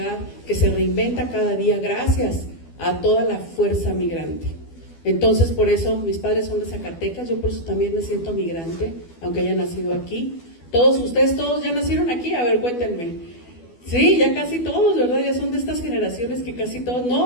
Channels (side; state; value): right; late; 12 ms